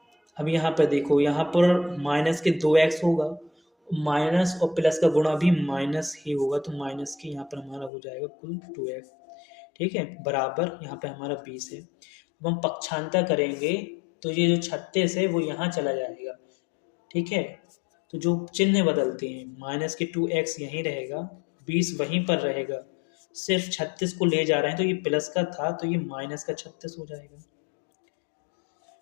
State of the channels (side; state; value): right; drops out; at 7.9 s